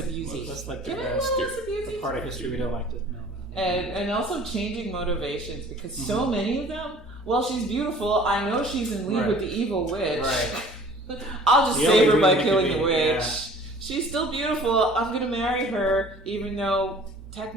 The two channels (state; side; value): normal; both; correlation 0.49